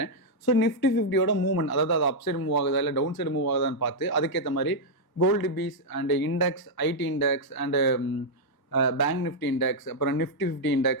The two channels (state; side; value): late; right; 1.1 ms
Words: ஸோ நிஃப்டி 50யோட மூவ்மெண்ட், அதாவது அது அப் சைடு மூவ் ஆகுதா இல்லை டவுன் சைடு மூவ் ஆகுதான்னு பார்த்து அதுக்கேற்ற மாதிரி gold bees and index, IT index and bank Nifty index, அப்புறம் Nifty 50